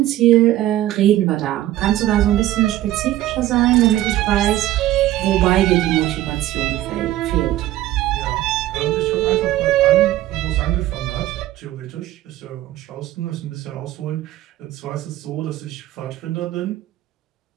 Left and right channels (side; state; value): left; quieter; 14.4 dB